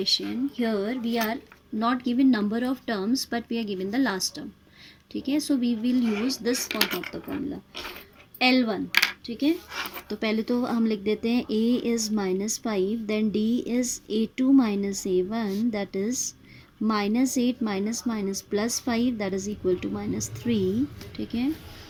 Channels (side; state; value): both; identical; correlation 1.00